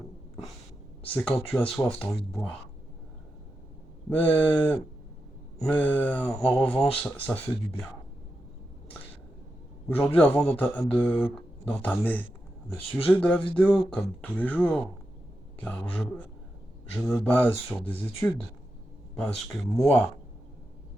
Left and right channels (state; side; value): normal; both; correlation 0.88